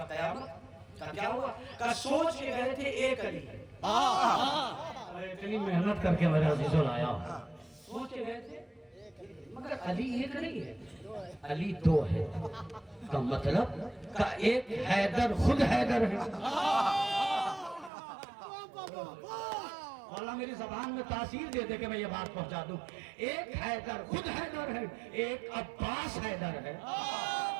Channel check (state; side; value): drops out; left; at 17.9 s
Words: قیامت. کہا کیا ہوا؟ کہا سوچ کے گئے تھے ایک علی ہے. اتنی محنت کر کے میرے عزیزوں لایا. سوچ کے گئے تھے مگر علی ایک نہیں ہے، علی دو ہے. کا مطلب کا ایک حیدر خود حیدر ہے. مولا میری زبان میں تاثیر دے دے کہ میں یہ بات پہنچا دوں. ایک حیدر خود حیدر ہے، ایک عباس حیدر ہے.